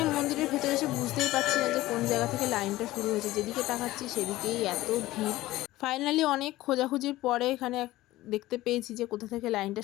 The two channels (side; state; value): right; quieter; 17.0 dB